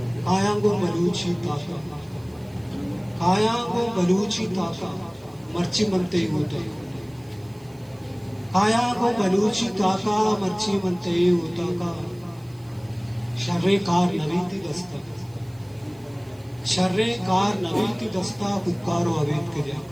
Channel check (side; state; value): right; noise; hiss, 29 dB below the sound